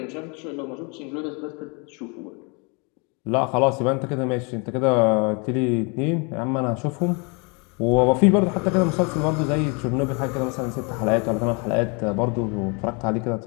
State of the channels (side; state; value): right; quieter; 32.5 dB